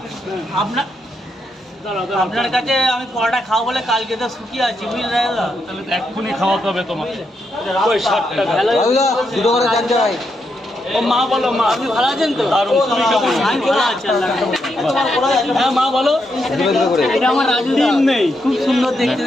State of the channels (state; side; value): normal; both; correlation 0.81